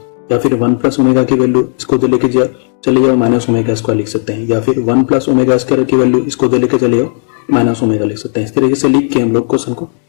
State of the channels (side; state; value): right; silent; 57 dB below the other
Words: या फिर 1 + ओमेगा की वैल्यू इसको इधर लेके जाओ, चले जाओ -ओमेगा स्क्वायर लिख सकते हैं। या फिर 1 + ओमेगा स्क्वायर की वैल्यू इसको इधर लेके चले जाओ -ओमेगा लिख सकते हैं। इस तरीके से लिख के हम लोग क्वेश्चन को